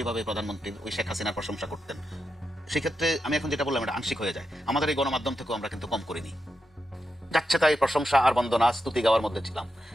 প্রধানমন্ত্রীর ওই শেখ হাসিনার প্রশংসা করতেন। সেক্ষেত্রে আমি এখন যেটা বললাম এটা আংশিক হয়ে যায়। আমাদের এই গণমাধ্যম থেকেও আমরা কিন্তু কম করিনি, যাচ্ছে তাই প্রশংসা আর বন্দনা স্তুতি গাওয়ার মধ্যে ছিলাম।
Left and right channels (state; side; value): normal; both; correlation 0.87